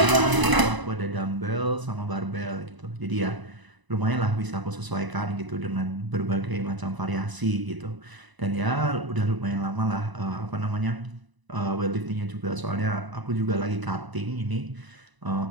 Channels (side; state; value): left; late; 1.0 ms